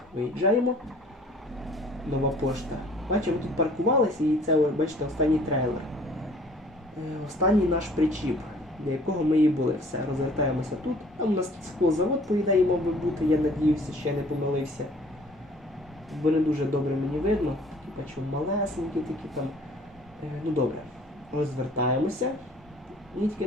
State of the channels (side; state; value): both; normal; correlation 0.54